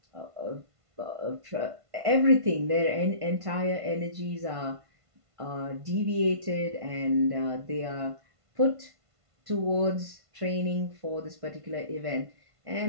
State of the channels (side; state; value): left; late; 1.5 ms